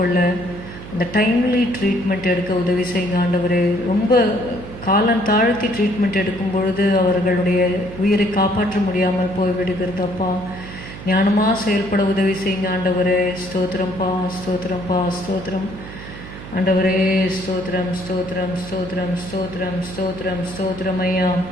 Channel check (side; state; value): right; noise; hum, 13 dB below the sound